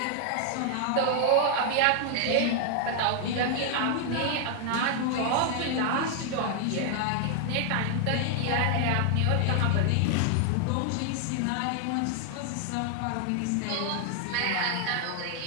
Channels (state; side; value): different; both; correlation 0.00